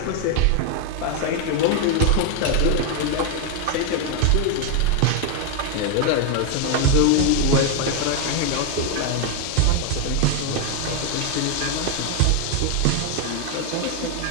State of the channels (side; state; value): both; different; correlation 0.01